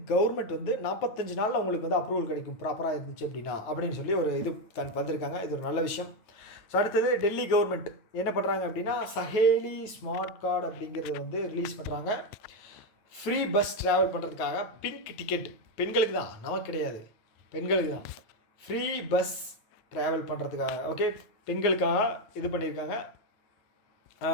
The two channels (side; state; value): right; late; 9.2 ms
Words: கவர்மெண்ட் வந்து 45 நாளில் உங்களுக்கு வந்து அப்ரூவல் கிடைக்கும் ப்ராப்பராக இருந்துச்சு அப்படின்னா அப்படின்னு சொல்லி ஒரு இது வந்திருக்காங்க. இது ஒரு நல்ல விஷயம். ஸோ அடுத்தது டெல்லி கவர்மெண்ட் என்ன பண்ணுறாங்க அப்படின்னா சஹேலி ஸ்மார்ட் கார்டு அப்படிங்கிறத வந்து ரிலீஸ் பண்ணுறாங்க. ஃப்ரீ பஸ் ட்ராவல் பண்ணுறதுக்காக பிங்க் டிக்கெட் பெண்களுக்கு தான், நமக்கு கிடையாது, பெண்களுக்கு தான் ஃப்ரீ பஸ் ட்ராவல் பண்ணுறதுக்காக. ஓகே, பெண்களுக்காக இது பண்ணியிருக்காங்க.